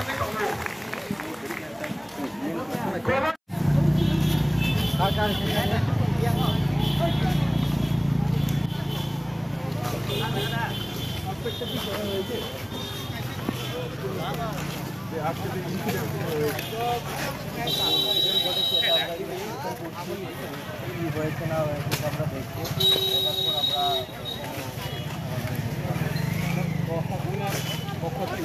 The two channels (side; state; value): both; identical; correlation 1.00